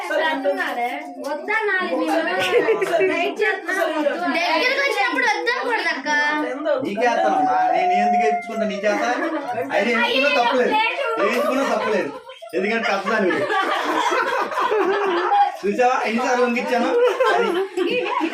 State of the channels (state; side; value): identical; both; correlation 1.00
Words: దగ్గరకు వచ్చినప్పుడు వద్దకూడదు అక్క. నీకేస్తానమ్మా, నేను ఎందుకు ఎత్తుకుంటా నీ చేత? అయితే ఎంచుకున్నా తప్పలేదు, ఎంచుకున్నా తప్పలేదు. ఎందుకంటే తప్పదాన్ని చూసావా ఎన్నిసార్లు వంగిచ్చాను.